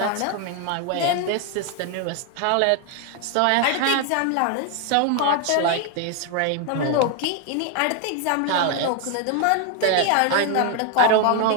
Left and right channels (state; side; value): different; both; correlation 0.01